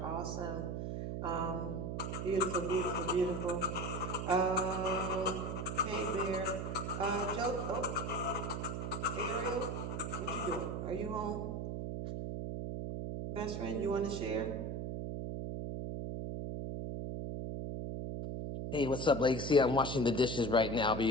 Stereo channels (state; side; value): noise; right; hum, 3 dB below the sound